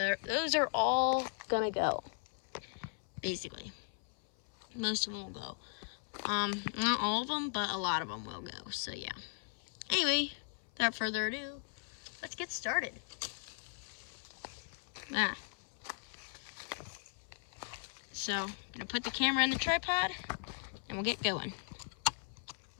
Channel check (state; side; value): silent; right; 53 dB below the other